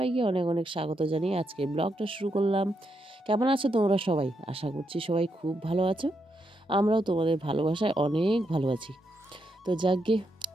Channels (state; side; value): normal; both; correlation 0.81